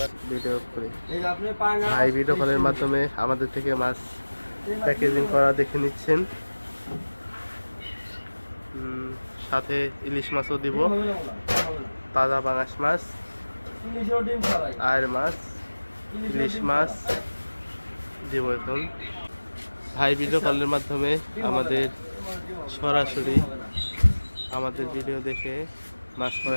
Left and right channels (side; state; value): both; inverted; correlation -1.00